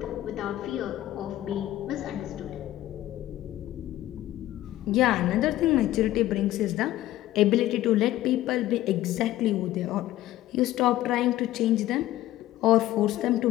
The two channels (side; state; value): right; quieter; 14.7 dB